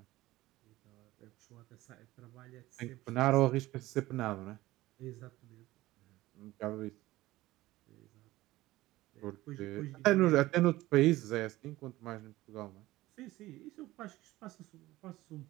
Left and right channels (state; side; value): quieter; left; 17.5 dB